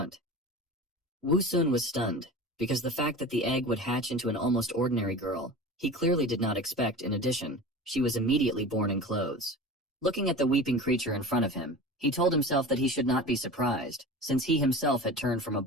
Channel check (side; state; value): both; normal; correlation 0.33